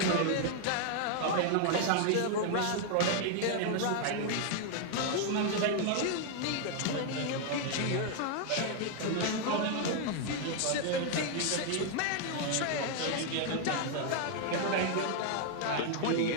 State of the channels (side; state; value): both; different; correlation 0.00